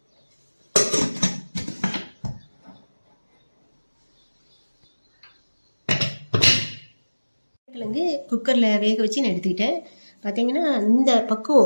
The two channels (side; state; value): both; inverted; correlation -1.00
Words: கிழங்கு குக்கரில் வேக வச்சு நான் எடுத்துக்கிட்டேன். பார்த்தீங்கன்னா இந்த